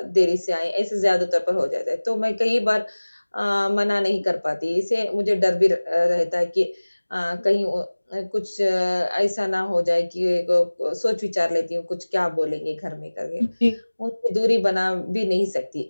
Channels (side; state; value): both; inverted; correlation -1.00